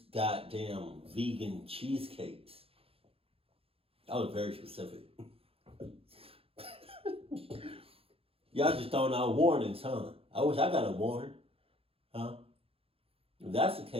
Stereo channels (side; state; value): left; late; 0.27 ms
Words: vegan cheesecakes. That was very specific. Y'all just throwing out warnings, huh? I wish I got a warning, huh? If that's the